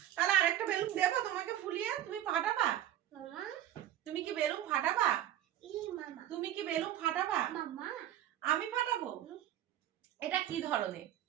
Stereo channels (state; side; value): quieter; left; 12.2 dB